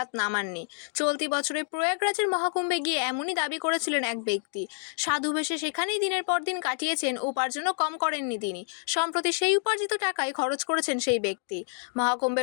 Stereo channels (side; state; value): right; silent; digital silence